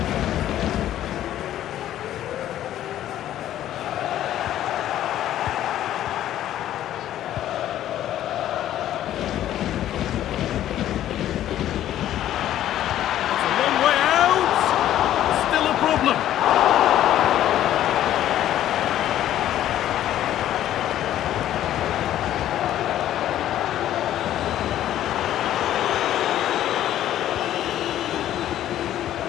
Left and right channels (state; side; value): quieter; right; 12.3 dB